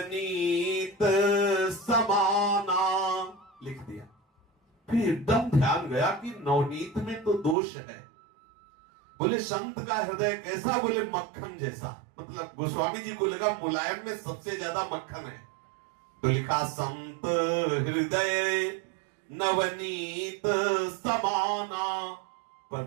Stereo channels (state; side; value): drops out; left; at 7.6 s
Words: समाना, लिख दिया। फिर एकदम ध्यान गया कि नवनीत में तो दोष है। बोले संत का हृदय कैसा? बोले मक्खन जैसा। मतलब गोस्वामी जी को लगा मुलायम में सबसे ज्यादा मक्खन है, तो लिखा संत हृदय नवनीत समाना। पर